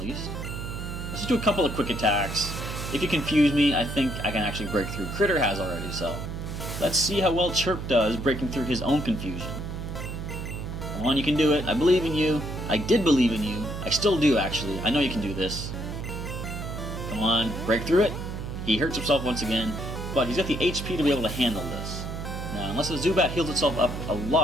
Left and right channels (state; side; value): noise; right; hum, 6 dB below the sound